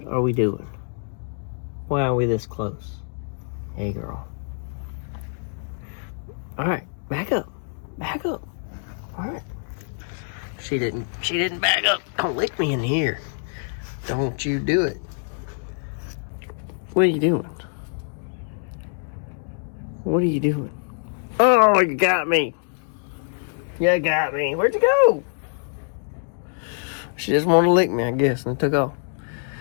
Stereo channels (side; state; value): right; silent; digital silence